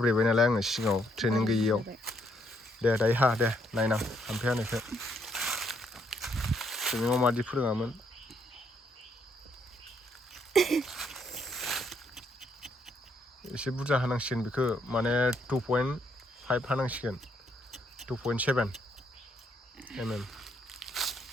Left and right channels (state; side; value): normal; both; correlation 0.72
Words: नालाय आङो सिगाङाव ट्रेनिं गैयियाव दे दायो हा दे नायनां हाम्फे हानायखौ ट्रेनिङाव मादि फोरोङामोन एसे बुरजा हानांसिगोन बेखौ माने 2.5 हानांसिगोन 2.7 mm